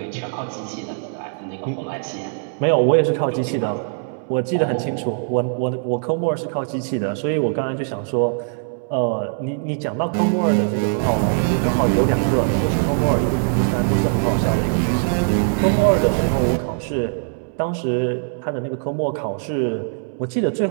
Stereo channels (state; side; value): silent; left; 65 dB below the other